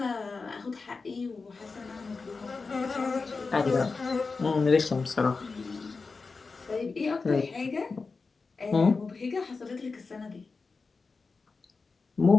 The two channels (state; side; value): quieter; right; 4.3 dB